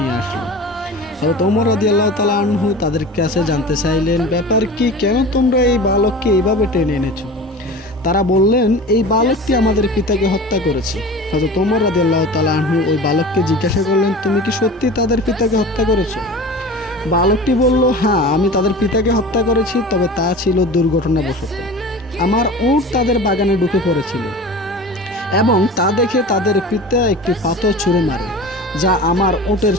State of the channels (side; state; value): both; normal; correlation 0.35